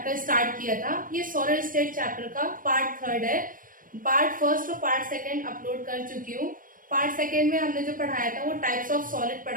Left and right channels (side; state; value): left; late; 0.40 ms